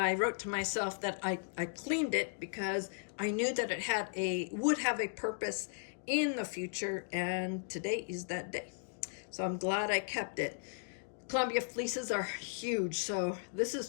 wrote to myself that I cleaned it because I knew that it would have a purpose in the future, and today is that day. So I'm glad I kept it. Columbia fleeces are huge, so this is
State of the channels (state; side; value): silent; right; digital silence